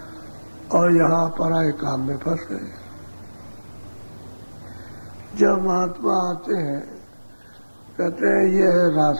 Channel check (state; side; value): inverted; both; correlation -1.00